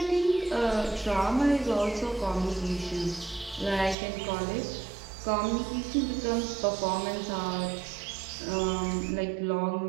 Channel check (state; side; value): drops out; left; at 4.0 s